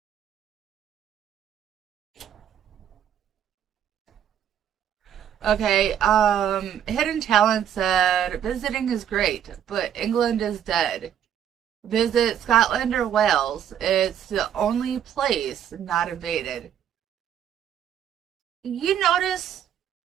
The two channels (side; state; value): left; quieter; 9.6 dB